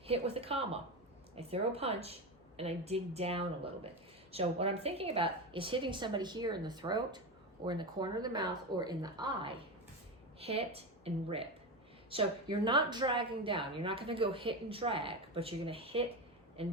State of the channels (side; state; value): both; normal; correlation 0.19